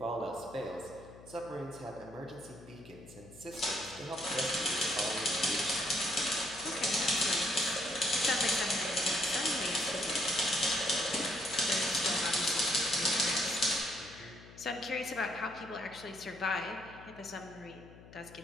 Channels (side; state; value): left; noise; hum, 19 dB below the sound